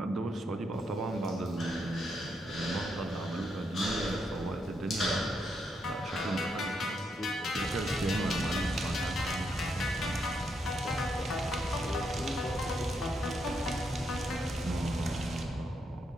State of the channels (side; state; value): both; normal; correlation 0.79